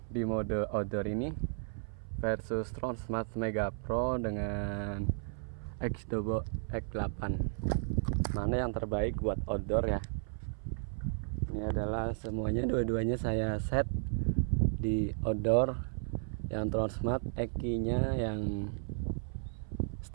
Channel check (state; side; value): silent; left; 55 dB below the other